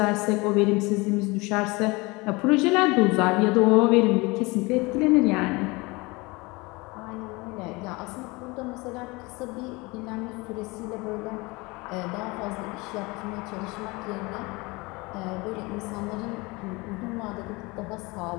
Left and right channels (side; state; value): right; quieter; 24.7 dB